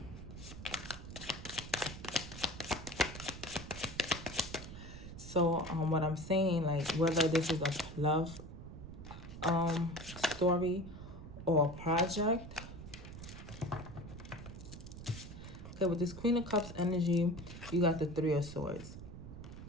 So So what I'm saying, like, whether this is a love story or a project. Okay, with this Queen of Cups energy, you got the Three of Swords.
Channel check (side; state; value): right; noise; rumble, 12 dB below the sound